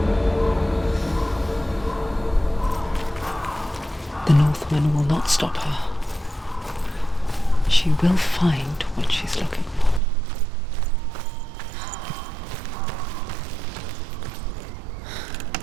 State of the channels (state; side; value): drops out; left; at 10.0 s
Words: Northman will not stop her. She will find what she's looking for.